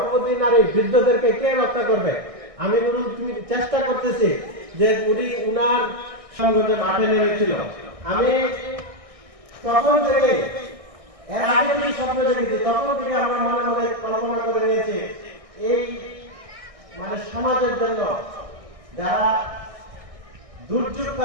নারী, বৃদ্ধদেরকে কে রক্ষা করবে? আমি চেষ্টা করতেছি যে উনার সংগঠনে মাঠে নেমেছিল। আমি তখন থেকে, এর আগে যে স্বপ্ন দেখেছি, তখন থেকে আমরা মনে মনে কল্পনা করে নিয়েছি এই মানে সমাজের জন্য যারা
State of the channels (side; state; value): left; late; 1.6 ms